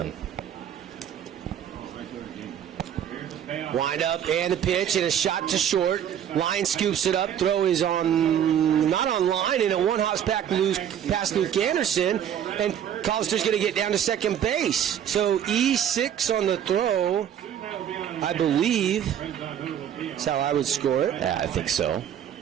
Wind up and the pitch and a shot to short. Line scoops it up. Throw is not on line, and a one-house past Luke Anderson. And Collister's going to get down to second base. So E6 on the throw, I believe. That's how I would score it. Yeah, I think so.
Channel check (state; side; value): quieter; left; 9.5 dB